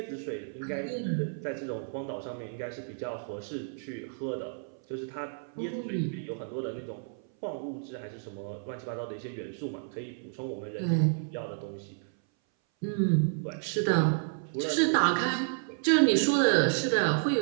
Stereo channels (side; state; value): left; silent; 57 dB below the other